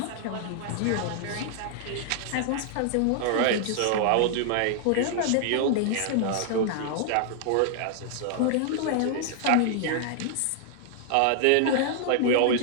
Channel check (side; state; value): both; different; correlation -0.01